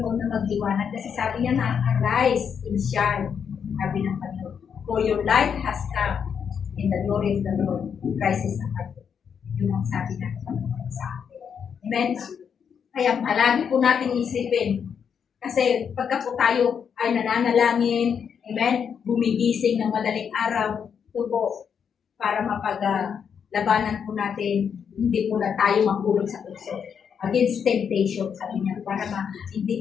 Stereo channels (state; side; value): quieter; right; 7.2 dB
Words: na magliwanag. Kasi sabi niya na, arise and shine. Sabi ng Panginoon, for your light has come in the glory of the Lord. Christ is upon you. Yun ang sabi ng Panginoon sa atin. Amen? Kaya palagi po natin isipin. Kasi pagka po tayo ay nananalangin, amen, gumigising ng madaling araw, ito po, para mapaglabanan po natin, hindi po na tayo mahulog sa tukso. Against temptation, sabi niya, para hindi